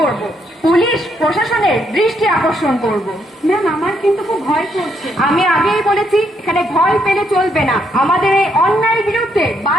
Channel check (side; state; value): both; normal; correlation 0.75